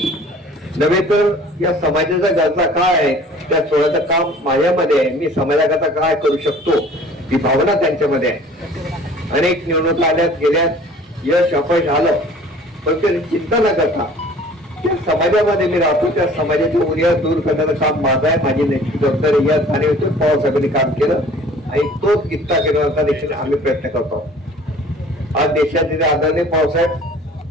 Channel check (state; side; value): normal; both; correlation 0.49